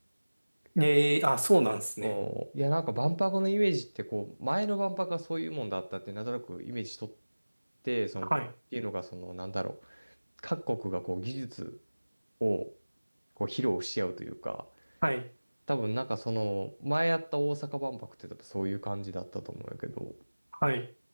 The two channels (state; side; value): inverted; both; correlation -1.00